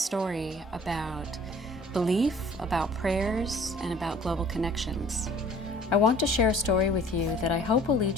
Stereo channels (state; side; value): normal; both; correlation 0.51